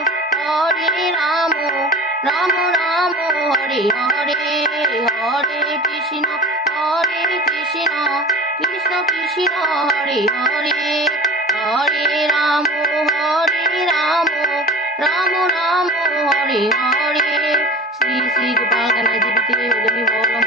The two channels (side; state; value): both; normal; correlation 0.37